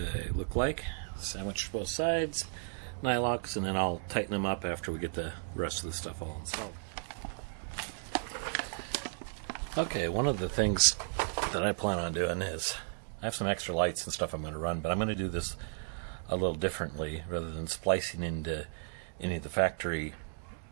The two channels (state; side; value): silent; left; digital silence